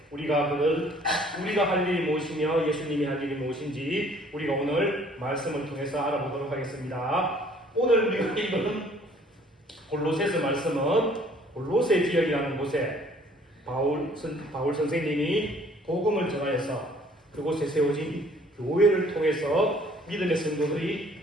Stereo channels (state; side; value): normal; both; correlation 0.57